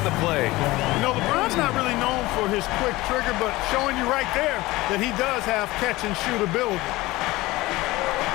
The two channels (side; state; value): right; quieter; 19.6 dB